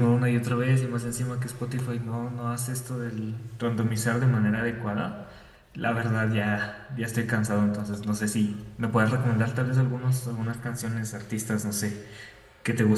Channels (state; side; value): identical; both; correlation 1.00